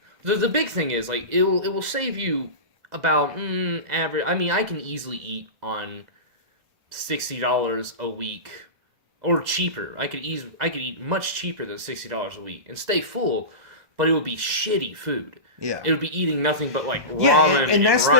The big thing is it will save you about average. I mean, I can easily eat on $60 a week. Or cheaper. I could eat much cheaper than $60 a week and stay full, but it would be shitty food. Yeah, it would be eating nothing but ramen and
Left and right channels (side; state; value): left; late; 2.0 ms